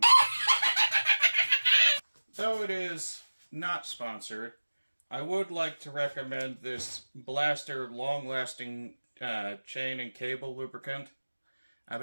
Though it is not sponsored, I would like to recommend this Blaster long-lasting chain and cable lubricant. I've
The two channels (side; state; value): both; inverted; correlation -1.00